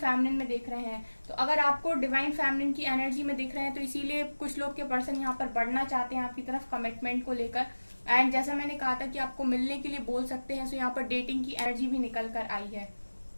में देख रहे हैं। तो अगर आपको डिवाइन फेमिनिन की एनर्जी में देख रहे हैं तो इसीलिए कुछ लोग के पर्सन यहाँ पर बढ़ना चाहते हैं आपकी तरफ कमिटमेंट को लेकर। एंड जैसा मैंने कहा था कि आपको मिलने के लिए बोल सकते हैं, सो यहाँ पर डेटिंग की एनर्जी भी निकल कर आई है।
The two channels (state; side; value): inverted; both; correlation -1.00